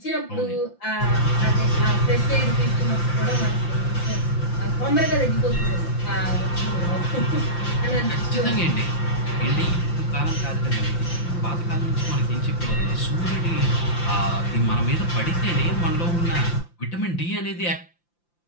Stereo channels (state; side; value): late; right; 5.8 ms